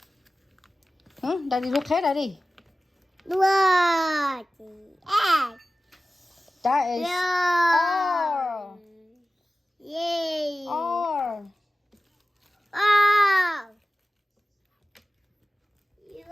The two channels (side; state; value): both; normal; correlation 0.96